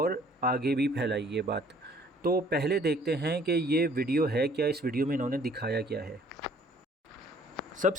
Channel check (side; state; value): both; normal; correlation 0.57